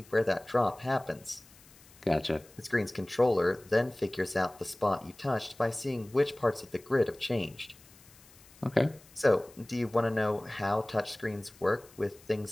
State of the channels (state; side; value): noise; left; hiss, 25 dB below the sound